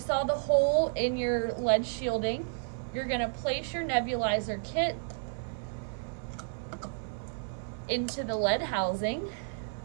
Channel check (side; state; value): left; silent; 57 dB below the other